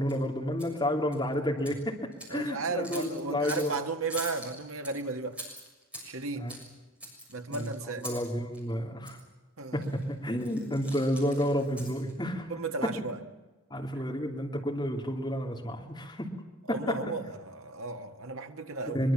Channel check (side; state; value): both; normal; correlation 0.52